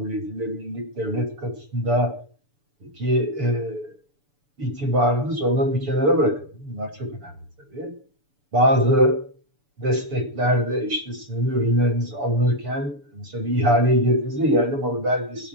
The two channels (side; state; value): left; late; 6.9 ms